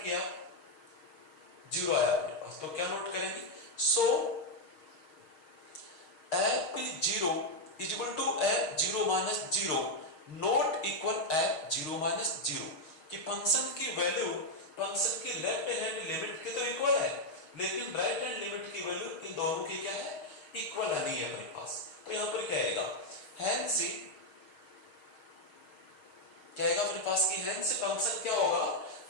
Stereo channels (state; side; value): late; right; 6.4 ms